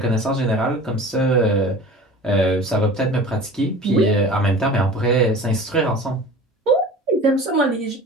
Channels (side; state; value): both; normal; correlation 0.39